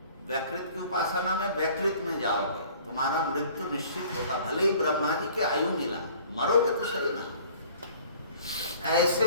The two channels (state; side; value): inverted; both; correlation -0.51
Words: व्याकृत की उपासना में व्याकृत में जाओगे, तुम्हारा मृत्यु निश्चित होगा। भले ही ब्रह्मा जी की आयु मिला, मरोगे तो सही ना। ऐसे